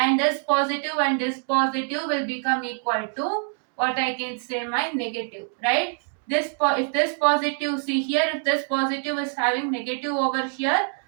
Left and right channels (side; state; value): left; silent; 56 dB below the other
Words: this positive will become equal to what I can say, my negative, right? If this positive, see here, if this positive is having negative over here,